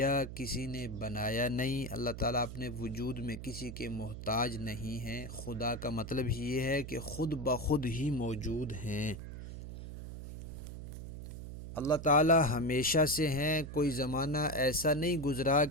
کسی نے بنایا نہیں۔ اللہ تعالیٰ اپنے وجود میں کسی کے محتاج نہیں ہیں۔ خدا کا مطلب یہ ہے کہ خود بخود ہی موجود ہیں۔ اللہ تعالیٰ ہمیشہ سے ہیں، کوئی زمانہ ایسا نہیں گزرا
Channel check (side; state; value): right; noise; hum, 9 dB below the sound